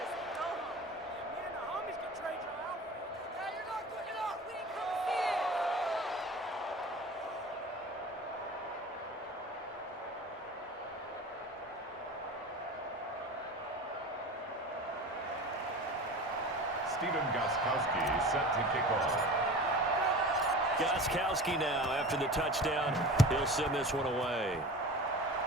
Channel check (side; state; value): both; normal; correlation 0.35